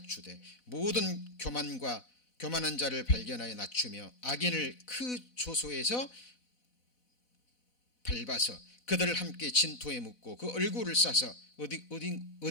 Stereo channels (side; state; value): right; late; 4.0 ms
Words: 모든 교만한 자를 발견하여 낮추며 악인을 그 조소에서 밟아서 그들을 함께 진토에 묻고 그 얼굴을 싸서